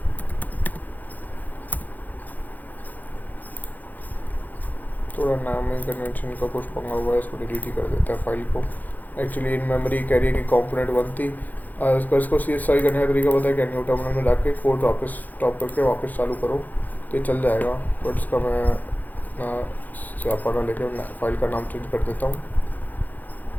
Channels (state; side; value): late; right; 0.083 ms